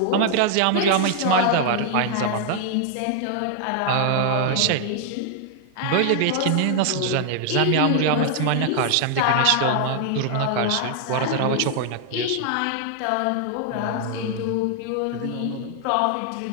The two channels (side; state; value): both; different; correlation 0.00